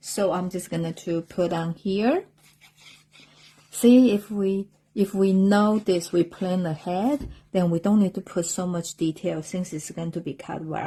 I'm just going to put on here. See, if we know this, we plan ahead, then we don't need to put so much detail since it's going to be cut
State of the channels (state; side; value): identical; both; correlation 1.00